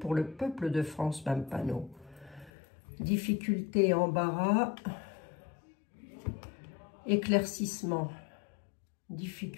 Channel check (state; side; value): drops out; right; at 2.5 s